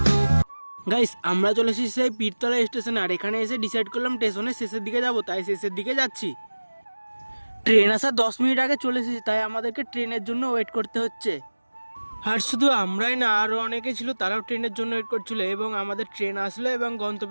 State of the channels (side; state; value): both; inverted; correlation -1.00